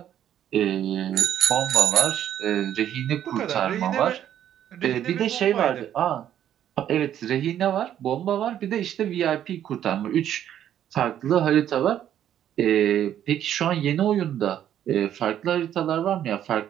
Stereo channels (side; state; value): left; quieter; 10.7 dB